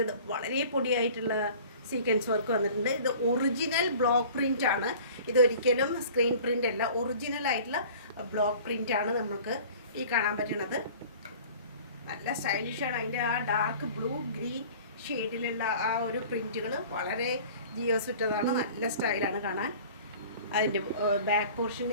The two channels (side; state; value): both; inverted; correlation -0.45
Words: വളരെ പൊടിയായിട്ടുള്ള സീക്വൻസ് വർക്ക് വന്നിട്ടുണ്ട്. ഇത് ഒറിജിനൽ ബ്ലോക്ക് പ്രിൻ്റ് ആണ്. ഇതൊരിക്കലും സ്ക്രീൻ പ്രിൻ്റ് അല്ല, ഒറിജിനൽ ആയിട്ടുള്ള ബ്ലോക്ക് പ്രിൻ്റ് ആണ് നമുക്ക് ഈ കാണാൻ പറ്റുന്നത്. നല്ല സ്റ്റൈലിഷാണ്. അതിൻ്റെ ആ ഡാർക്ക് ബ്ലൂ ഗ്രീൻ ഷെയ്ഡിലുള്ള ആ ഒരു പ്രിൻറ്റുകൾ വളരെ ജിയോസുറ്റതാണ്. നല്ല സ്റ്റൈലാണ് കാണാൻ. അതിൻ്റെ ബാക്ക്